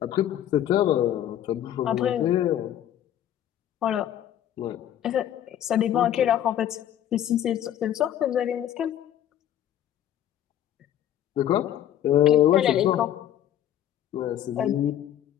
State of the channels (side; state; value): right; quieter; 11.2 dB